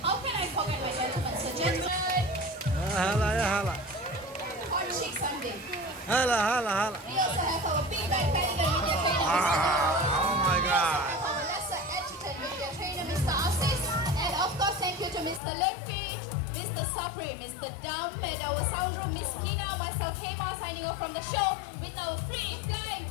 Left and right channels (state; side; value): drops out; right; at 15.4 s